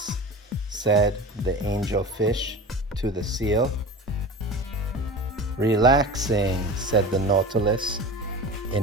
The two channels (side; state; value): both; normal; correlation 0.32